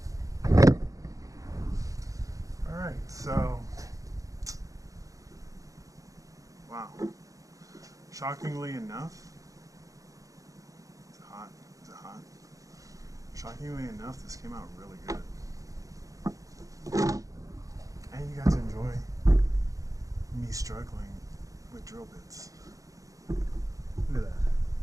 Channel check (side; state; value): left; late; 0.16 ms